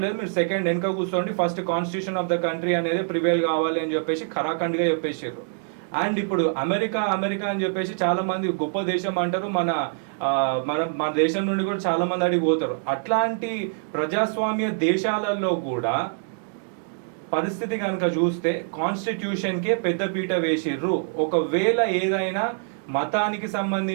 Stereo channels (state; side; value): silent; left; digital silence